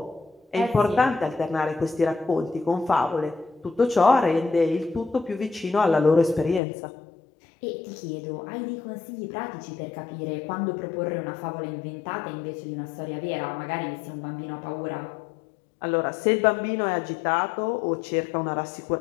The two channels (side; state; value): right; drops out; at 6.6 s